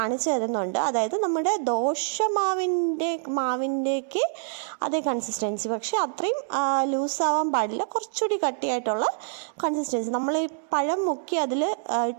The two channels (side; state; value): left; silent; 61 dB below the other